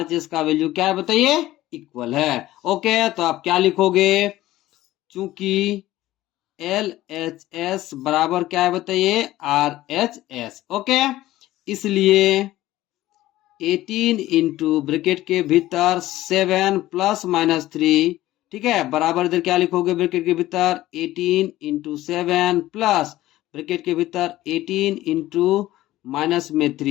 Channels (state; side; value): quieter; right; 15.8 dB